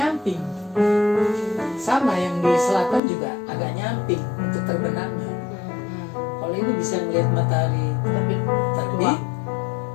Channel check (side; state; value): right; drops out; at 3.0 s